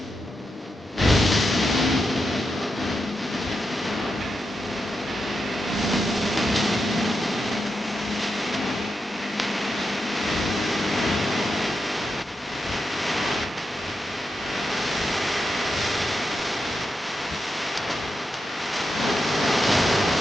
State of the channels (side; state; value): both; normal; correlation 0.87